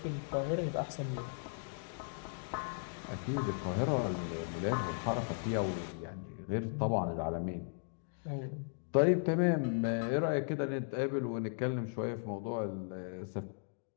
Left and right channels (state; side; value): silent; right; digital silence